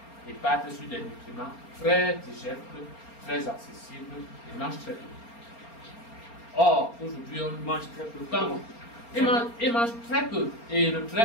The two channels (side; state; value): right; late; 4.3 ms